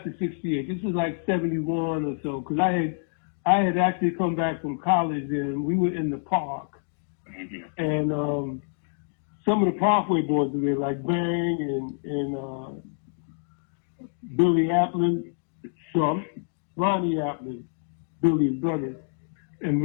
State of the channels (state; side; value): silent; right; digital silence